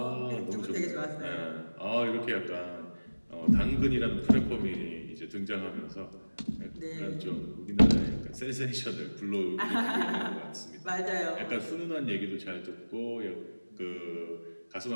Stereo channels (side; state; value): both; inverted; correlation -1.00